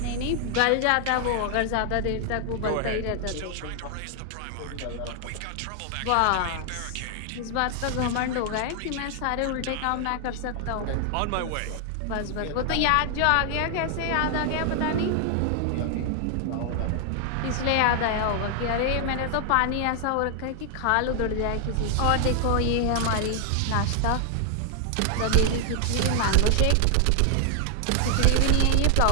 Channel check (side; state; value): both; different; correlation 0.00